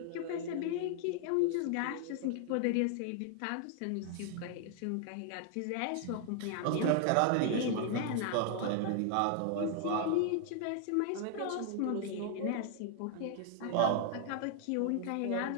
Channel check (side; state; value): both; different; correlation 0.00